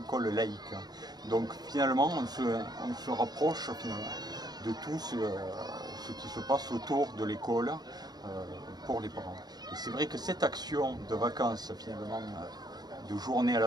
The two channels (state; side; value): late; left; 0.19 ms